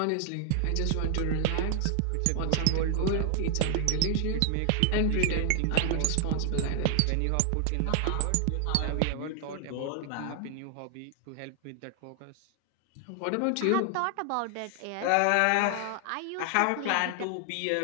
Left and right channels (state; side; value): different; both; correlation 0.00